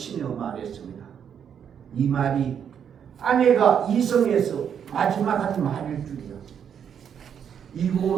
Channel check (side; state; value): left; quieter; 8.1 dB